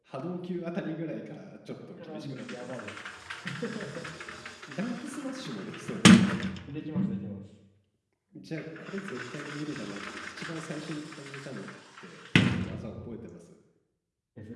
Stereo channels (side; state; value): both; identical; correlation 1.00